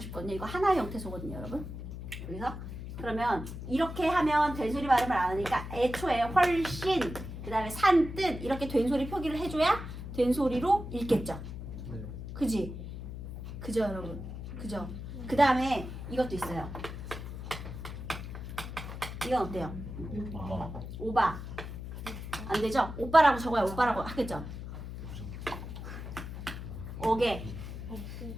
싶거든요. 이거 하나의 형태소거든요, 여러분. 여기서 그러면 이렇게 하면 된소리 발음을 안 하니까 애초에 훨씬, 그 다음에 산뜻 이렇게 된소리 표기를 해줘야 된소리로 읽겠죠. 그지? 그죠, 여러분? 그죠? 그 다음에 이것도 있어요. 이건 어때요? 오바. 안 되죠? 오빠라고 적어야 오빠라고 하겠죠? 어깨.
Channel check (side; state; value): left; noise; hum, 8 dB below the sound